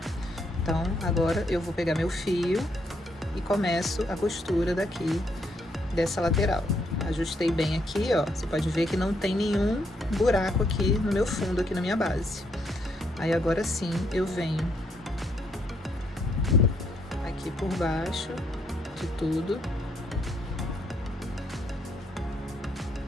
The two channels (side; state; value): both; normal; correlation 0.74